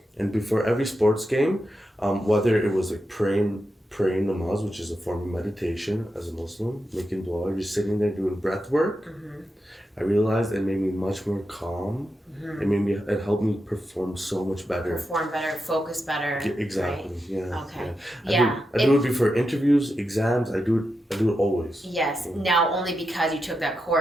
and before every sports game, whether it was like praying namaz, which is a form of meditation as a Muslim, making dua, you're sitting there doing breath work. I realized it made me much more calm. It helped me perform so much better. Focus better. Exactly. Right? Yeah. Okay. I do it before interviews, exams. I do it always. Yes. Now only because you took that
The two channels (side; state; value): both; normal; correlation 0.88